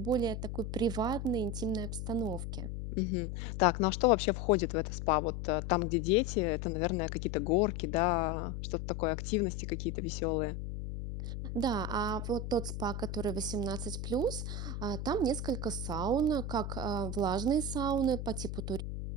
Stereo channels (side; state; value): left; noise; hum, 5 dB below the sound